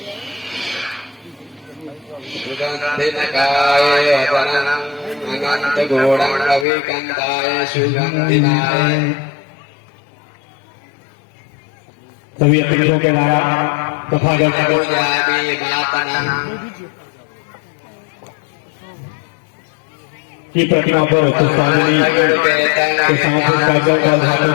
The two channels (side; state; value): right; drops out; at 6.7 s